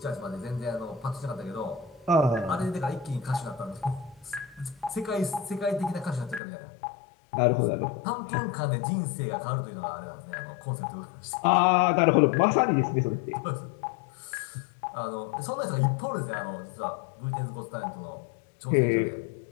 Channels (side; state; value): right; drops out; at 6.4 s